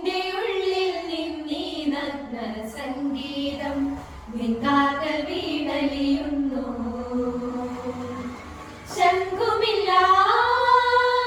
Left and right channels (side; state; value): both; identical; correlation 1.00